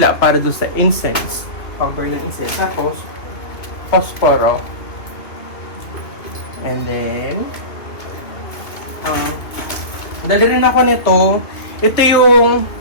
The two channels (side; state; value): right; late; 2.7 ms